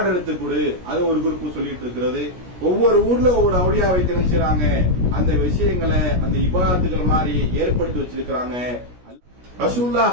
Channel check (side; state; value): left; late; 17 ms